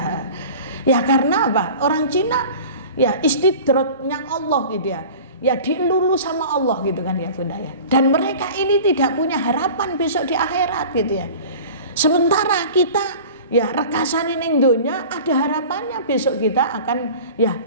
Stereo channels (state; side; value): inverted; both; correlation -0.40